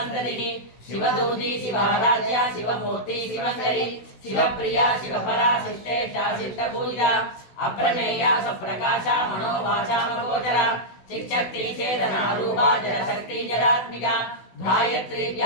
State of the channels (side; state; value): right; late; 16 ms